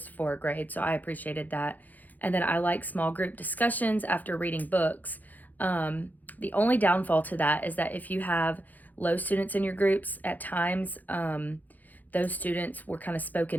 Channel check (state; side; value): late; right; 0.083 ms